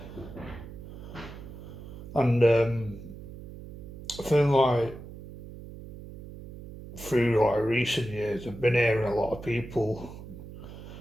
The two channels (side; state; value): right; noise; hum, 13 dB below the sound